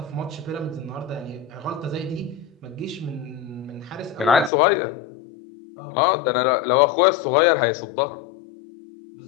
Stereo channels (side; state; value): right; drops out; at 4.5 s